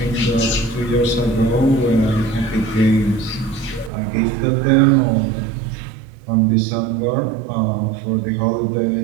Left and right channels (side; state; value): left; drops out; at 3.9 s